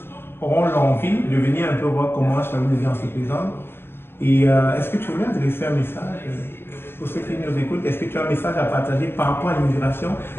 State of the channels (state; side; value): late; right; 0.11 ms